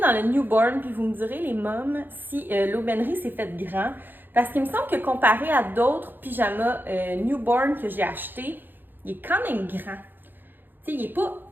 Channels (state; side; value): late; left; 0.093 ms